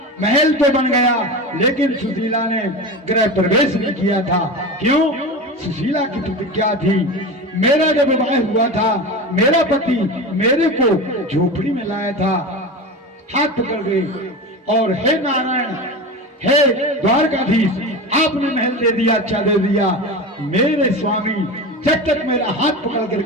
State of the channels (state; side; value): normal; both; correlation 0.27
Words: महल तो बन गया, लेकिन सुशीला ने गृह प्रवेश नहीं किया था। क्यों? सुशीला की प्रतिज्ञा थी, मेरा जब विवाह हुआ था, मेरा पति मेरे को झोपड़ी में लाया था, हाथ पकड़ गए और हे नारायण, हे द्वारकाधीश, आपने महल दे दिया, अच्छा दे दिया, मेरे स्वामी जब तक मेरा हाथ पकड़